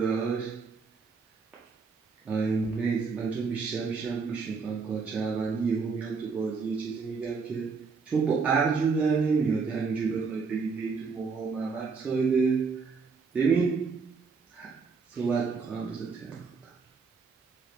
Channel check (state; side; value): quieter; left; 5.0 dB